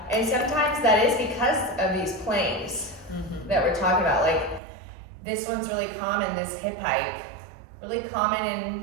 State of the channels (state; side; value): drops out; left; at 4.6 s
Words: And sometimes that is because of these planes that we're talking about. Like this one's really common, this hip hike, really common, and